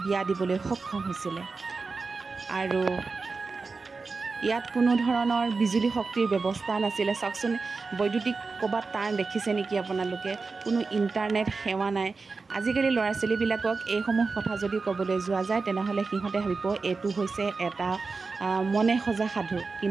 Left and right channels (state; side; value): quieter; left; 4.2 dB